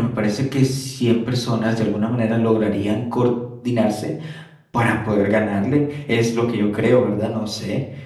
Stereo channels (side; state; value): both; identical; correlation 1.00